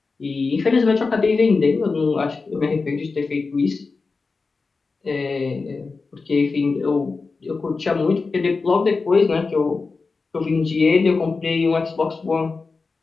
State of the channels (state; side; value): quieter; right; 4.2 dB